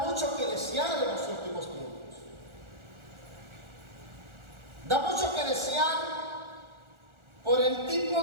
mucho que desear en los últimos tiempos. Da mucho que desear por el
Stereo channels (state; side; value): late; left; 1.4 ms